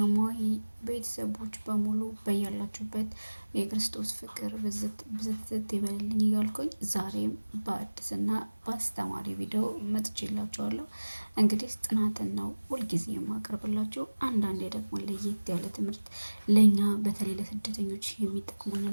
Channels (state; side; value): inverted; both; correlation -1.00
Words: ቤተሰቦች በሙሉ በያላችሁበት የክርስቶስ ፍቅር ብዝት ይበልልኝ እያልኩኝ ዛሬም በአዲስና በአስተማሪ ቪዲዮ መጥቼላችኋለሁ። እንግዲህ ጥናትን ነው ሁልጊዜ የማቀርብላችሁ። አንዳንዴ ደግሞ ለየት ያለ ትምህርት ለእኛ በተለይ ለስደተኞች